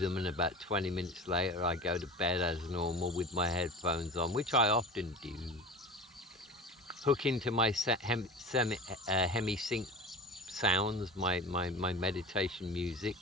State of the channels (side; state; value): both; normal; correlation 0.34